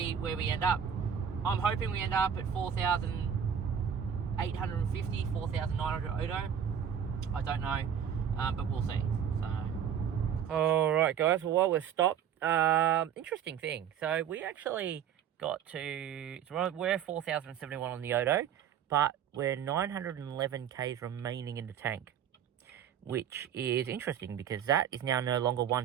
where we end up. I'm hoping we end up at 4,850, 4,900 Odo. I don't know, but we'll see. So, all right, guys. Well, while we're stopped, interesting thing. So we actually got to, we're 4,071 on the Odo, but we're 911 k's remaining in the tank. which is interesting because that is now no longer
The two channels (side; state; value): left; quieter; 8.5 dB